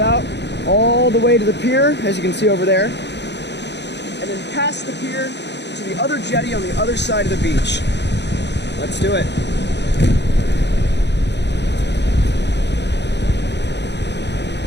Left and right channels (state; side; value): late; right; 0.50 ms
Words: all the way to the pier, as you can see over there. And then past the pier to the other jetty on the other side of the beach. Let's do it.